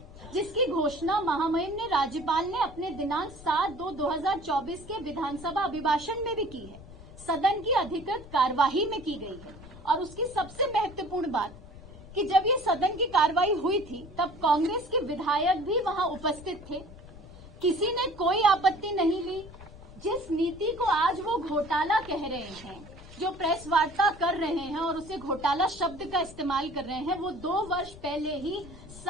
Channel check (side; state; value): left; noise; rumble, 18 dB below the sound